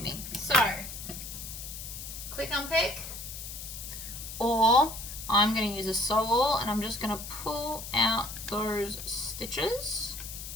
So, quick unpick, or I'm going to use a sewall and I'm just going to pull out those stitches.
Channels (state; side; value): noise; left; hiss, 9 dB below the sound